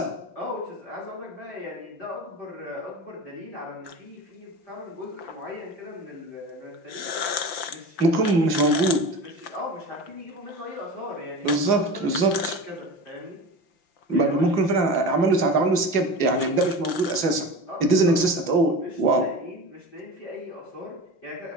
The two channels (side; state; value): right; late; 5.9 ms